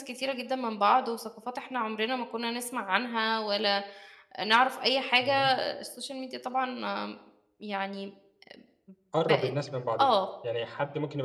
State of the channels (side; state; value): both; identical; correlation 1.00